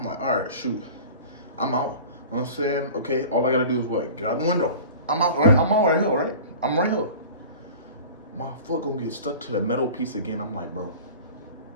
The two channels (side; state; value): both; inverted; correlation -0.39